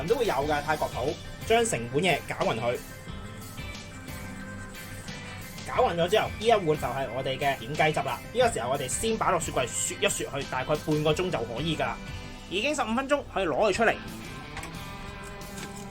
都會有嘅泰國鋪。將成碗嘢攪勻佢，攪勻咗之後，呢一碗就係我哋嘅點雞汁啦。呢個時候我哋先擺落雪櫃雪一雪去，大概半個鐘就可以噶啦。已經15分鐘，可以攞佢出嚟，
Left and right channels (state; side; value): identical; both; correlation 1.00